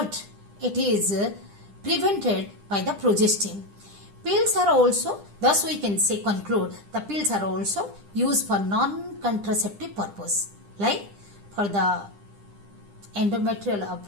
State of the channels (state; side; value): late; left; 9.9 ms